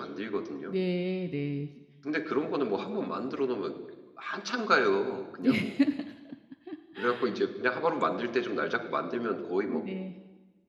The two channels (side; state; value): both; identical; correlation 1.00